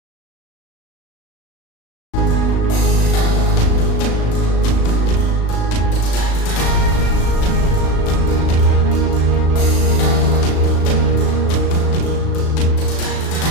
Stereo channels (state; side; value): late; right; 36 ms